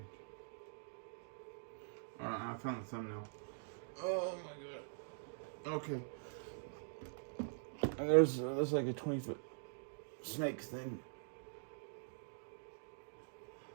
Alright, I found the thumbnail. Oh my god. Okay. And there's like a 20-foot snake thing.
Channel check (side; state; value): left; silent; digital silence